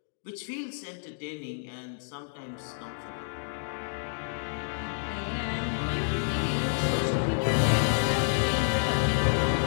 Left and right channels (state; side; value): silent; right; digital silence